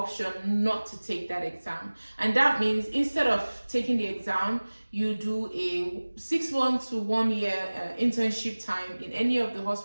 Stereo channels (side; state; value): both; inverted; correlation -1.00